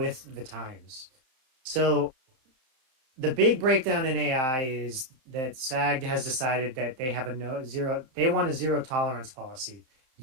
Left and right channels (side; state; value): left; late; 31 ms